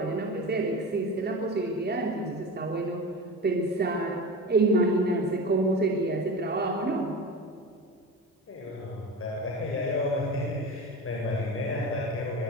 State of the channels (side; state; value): both; normal; correlation 0.29